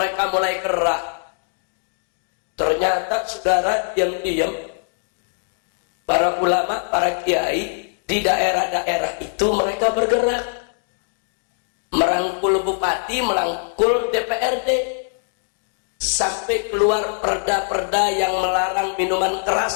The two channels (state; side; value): silent; right; digital silence